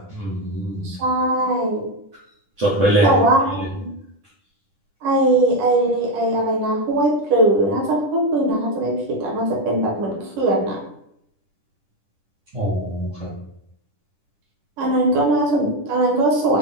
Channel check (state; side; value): late; left; 10 ms